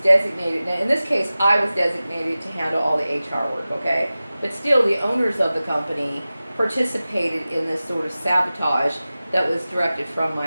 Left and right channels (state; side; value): inverted; both; correlation -0.96